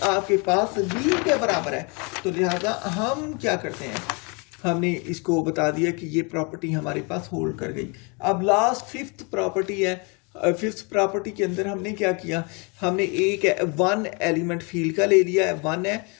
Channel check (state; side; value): quieter; right; 31.9 dB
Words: आपके पास v के बराबर है। तो लिहाजा हम क्या करते हैं, हमने इसको बता दिया कि ये प्रॉपर्टी हमारे पास होल्ड कर गई। अब लास्ट फिफ्थ प्रॉपर्टी है, फिफ्थ प्रॉपर्टी के अंदर हमने क्या किया, हमने एक वन एलिमेंट फील्ड का ले लिया है, वन है,